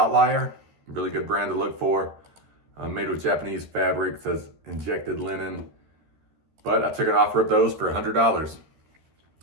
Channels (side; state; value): left; late; 13 ms